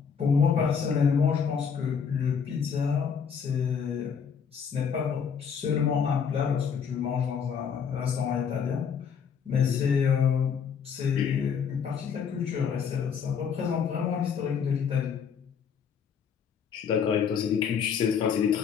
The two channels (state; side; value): quieter; right; 6.9 dB